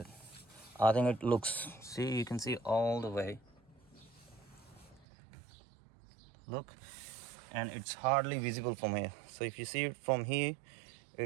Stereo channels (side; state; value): left; drops out; at 5.1 s